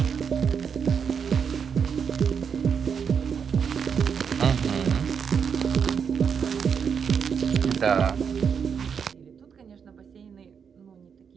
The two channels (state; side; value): quieter; left; 6.8 dB